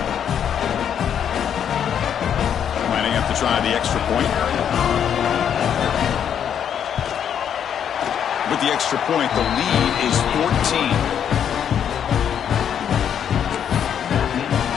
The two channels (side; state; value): right; quieter; 8.7 dB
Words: To try the extra point. With the extra point, the lead is 14.